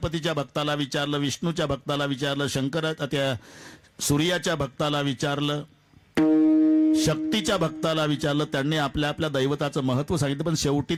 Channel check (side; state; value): both; identical; correlation 1.00